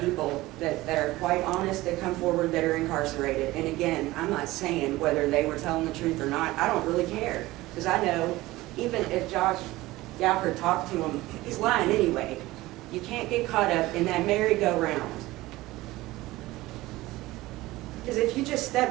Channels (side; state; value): left; quieter; 18.5 dB